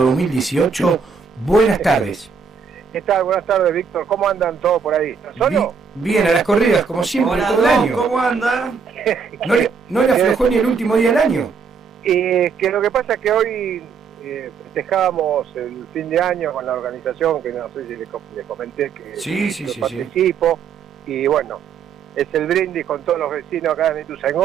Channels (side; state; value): left; quieter; 5.9 dB